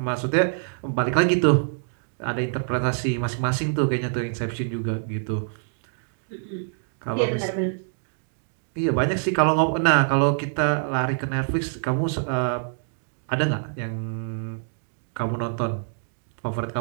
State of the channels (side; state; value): left; silent; digital silence